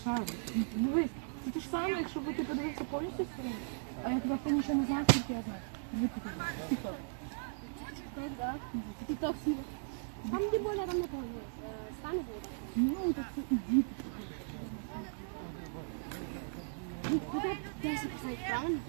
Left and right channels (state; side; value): silent; left; digital silence